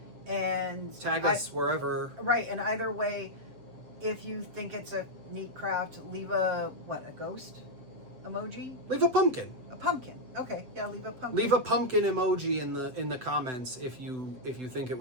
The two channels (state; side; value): late; left; 7.9 ms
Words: and tag us wherever. Right, and either way, if you think it's a neat craft, leave a ghost emoji? Leave a pumpkin. A pumpkin. Okay, yeah, leave a pumpkin. Leave a pumpkin emoji in the comments if you think it